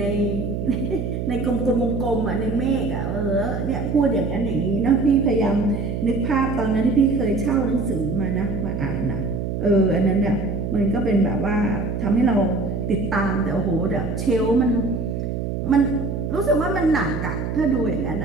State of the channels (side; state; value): right; noise; hum, 3 dB below the sound